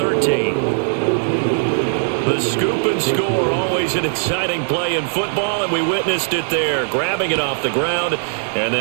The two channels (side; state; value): left; silent; digital silence